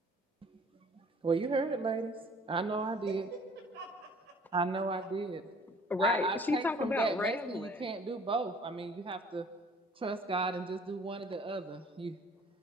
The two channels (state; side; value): normal; both; correlation 0.53